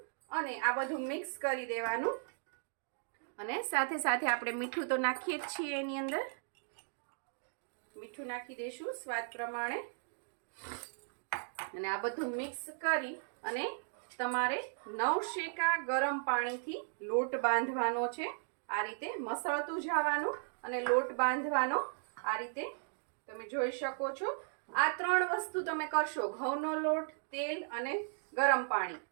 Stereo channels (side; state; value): left; silent; digital silence